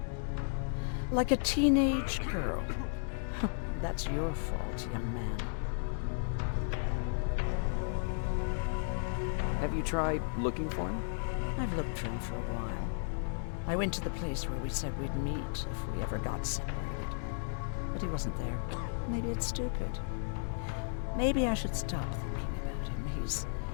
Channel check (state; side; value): silent; right; digital silence